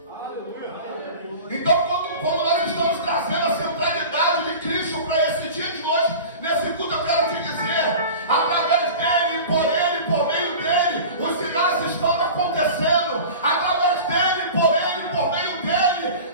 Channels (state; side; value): inverted; both; correlation -0.36